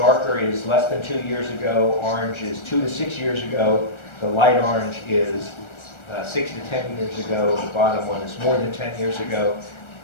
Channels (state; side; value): late; right; 1.3 ms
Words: is less than 2 years ago, orange is 2 to 6 years ago, the light orange is 6 to 10 years ago, the bottom one is more than 10 years ago.